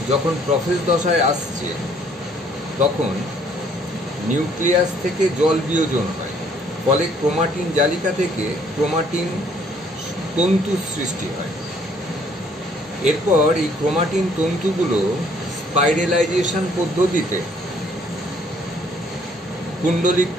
যখন প্রোফেজ দশায় আসছে তখন নিউক্লিয়াস থেকে জল বিয়োজন হয়, ফলে ক্রোমাটিন জালিকা থেকে ক্রোমাটিন তন্তুর সৃষ্টি হয়। এরপর এই ক্রোমাটিন তন্তুগুলো স্পাইরালাইজেশন পদ্ধতিতে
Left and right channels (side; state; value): both; normal; correlation 0.62